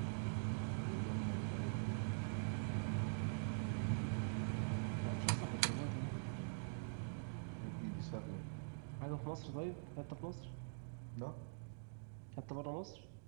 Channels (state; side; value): silent; left; digital silence